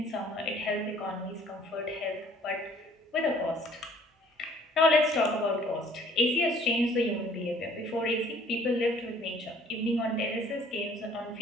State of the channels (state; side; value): normal; both; correlation 0.56